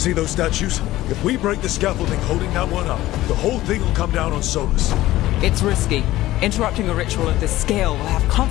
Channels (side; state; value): right; quieter; 16.0 dB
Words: those statues? If we break the scaffolding holding that one up, the whole thing will come down on Solus. It's risky. Interrupting a ritual of this scale will have